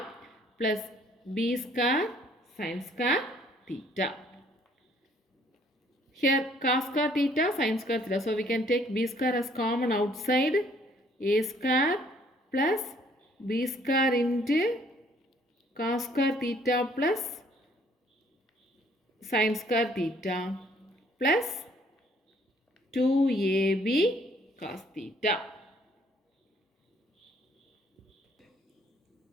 plus B square sin square theta. Here cos square theta, sin square theta. So we can take B square as common outside. A square plus B square into cos square theta plus sin square theta plus 2AB cos theta.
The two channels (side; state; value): both; normal; correlation 0.62